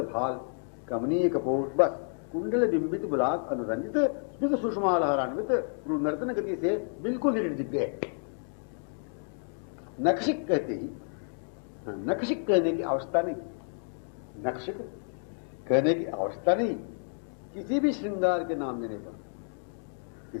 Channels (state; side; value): silent; right; 57 dB below the other